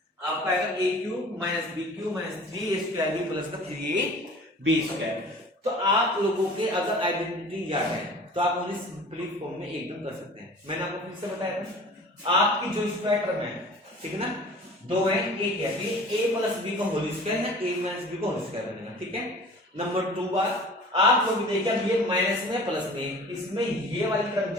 आपका आएगा a cube minus b cube minus 3a square b plus का 3ab स्क्वायर। तो आप लोगों के अगर आइडेंटिटी याद है तो आप उन्हें सिंपली फॉर्म में एकदम कर सकते हैं। मैंने आपको फिर से बताया था, आपकी जो स्क्वायर टर्म है, ठीक है ना, दो है, एक है ये a प्लस b का होल स्क्वायर है, a माइनस b का होल स्क्वायर बनेगा, ठीक है। नंबर 2 बार आप लोग देखिए, अब ये माइनस में प्लस में, इसमें ये वाली टर्म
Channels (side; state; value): both; normal; correlation 0.44